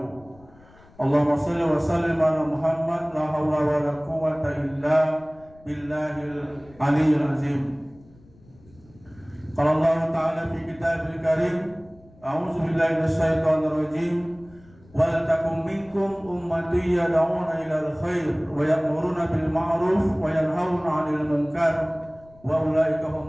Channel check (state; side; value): noise; left; rumble, 26 dB below the sound